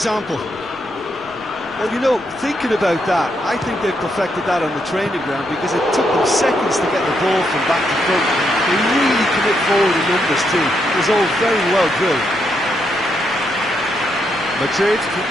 Well, you know, thinking about that, I think they've perfected that on the training ground because it took them seconds to get the ball from back to front. They really commit forward in numbers too. It was all very well drilled. Madrid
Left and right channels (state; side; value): noise; left; rumble, 29 dB below the sound